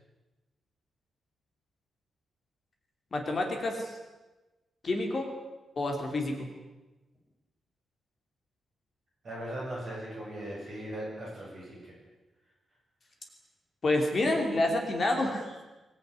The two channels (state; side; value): normal; both; correlation 0.87